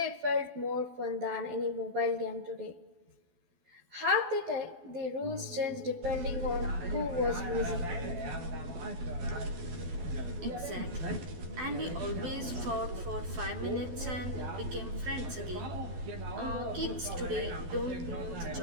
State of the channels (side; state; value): left; late; 12 ms